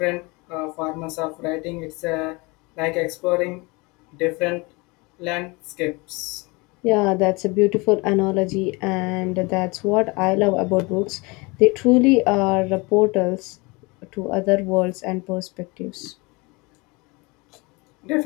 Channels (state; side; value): quieter; right; 26.3 dB